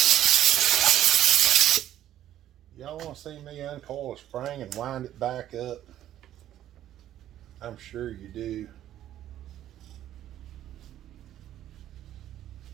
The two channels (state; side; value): quieter; left; 12.1 dB